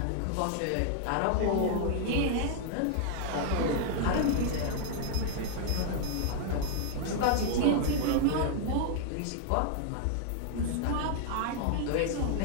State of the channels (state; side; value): different; both; correlation 0.00